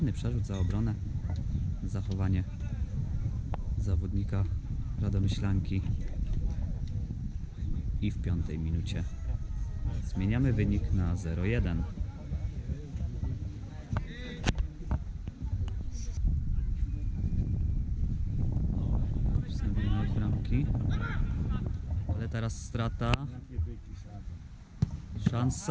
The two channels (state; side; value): identical; both; correlation 1.00